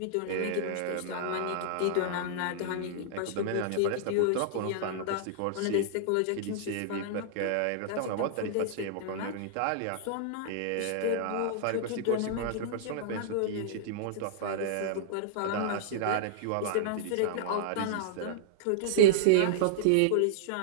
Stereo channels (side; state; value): both; different; correlation -0.02